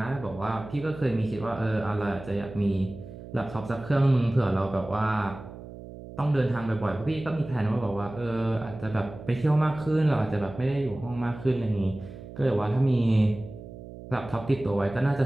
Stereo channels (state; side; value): noise; right; hum, 14 dB below the sound